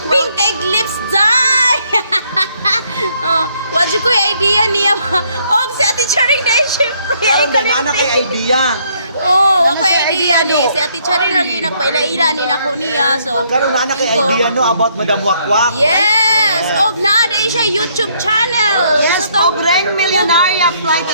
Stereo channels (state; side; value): inverted; both; correlation -0.68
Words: Pink egg lips dye. Oh, wala ko yung idea niya. Oh, si Ate Charing dahil syempre. Karon na kay idea. Oh, ako idea ni. Si Ate Charing lagi nagpaila-ila ni nako niya. So, Karon na kay idea no about Madam Wakwak. yes. Og naaday siya YouTube channel. Yes, Pobreng Millionaire Flight